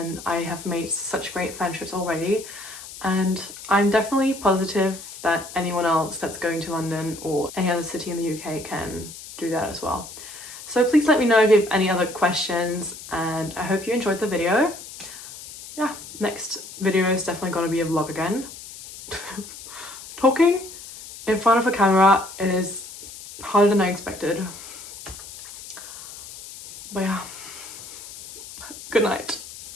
I have made such great friendships already, and I'm definitely positive that anyone else that's going to London or any other city in the UK can do that as well. So please let me know if you have any other questions, and I hope you enjoyed the video. Yeah, next video is definitely going to be a vlog again. Talking in front of a camera is harder than I expected. But yeah, good night.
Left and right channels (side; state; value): left; noise; hiss, 14 dB below the sound